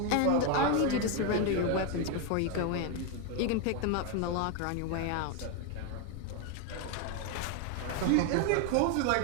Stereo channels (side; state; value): both; different; correlation 0.01